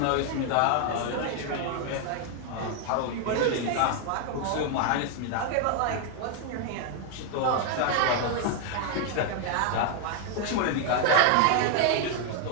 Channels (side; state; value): both; different; correlation 0.00